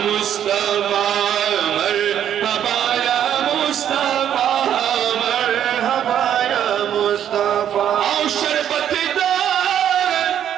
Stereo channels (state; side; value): quieter; left; 9.9 dB